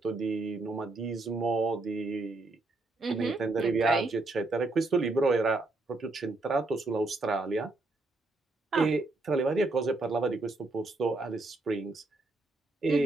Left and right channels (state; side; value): quieter; left; 3.2 dB